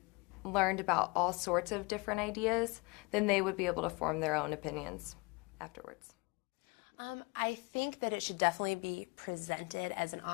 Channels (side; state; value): right; quieter; 27.6 dB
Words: learned about all sorts of different ideas, then they would be able to form their own opinions afterwards. I think that it should definitely be presented as an